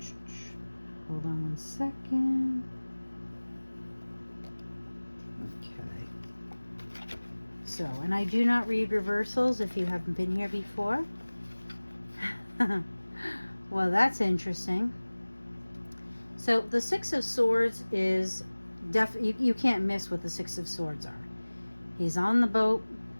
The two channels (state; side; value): inverted; both; correlation -1.00